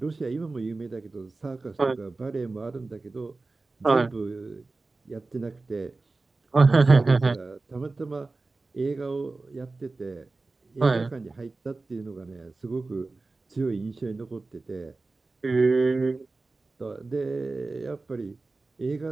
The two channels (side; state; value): left; quieter; 3.5 dB